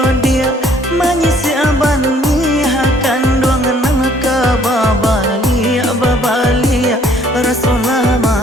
dia manyisi aban akan doang nang kababalia babalia Rasulullah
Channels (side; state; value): both; normal; correlation 0.61